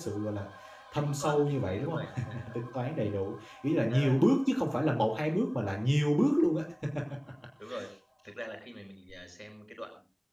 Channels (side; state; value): both; identical; correlation 1.00